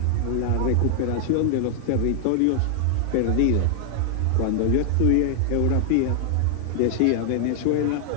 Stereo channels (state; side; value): different; both; correlation 0.00